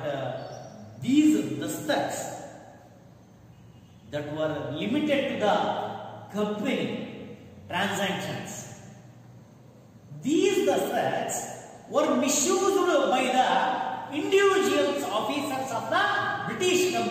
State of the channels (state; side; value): identical; both; correlation 1.00